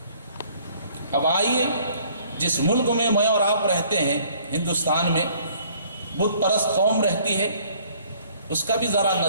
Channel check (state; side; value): inverted; both; correlation -0.58